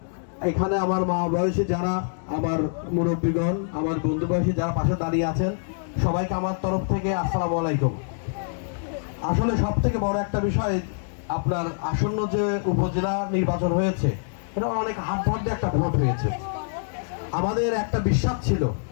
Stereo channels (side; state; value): right; silent; digital silence